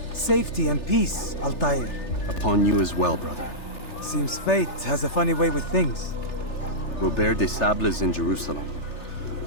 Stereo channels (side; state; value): right; late; 3.3 ms